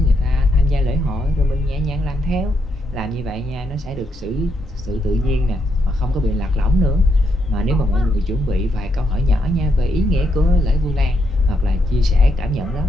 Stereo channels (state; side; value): normal; both; correlation 0.79